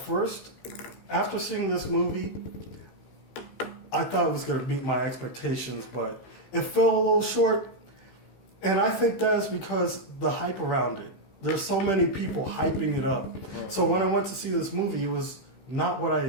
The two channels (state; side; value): late; right; 15 ms